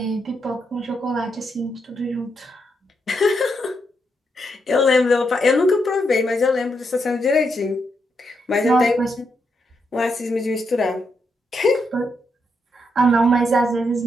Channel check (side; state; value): both; normal; correlation 0.81